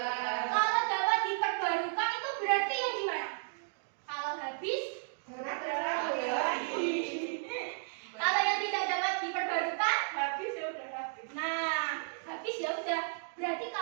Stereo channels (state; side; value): silent; left; digital silence